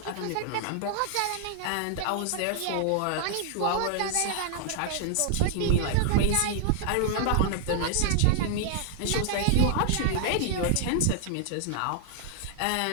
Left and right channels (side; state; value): both; different; correlation 0.00